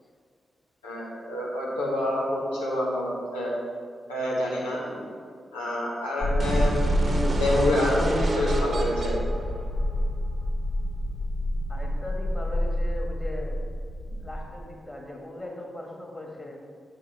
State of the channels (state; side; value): normal; both; correlation 0.87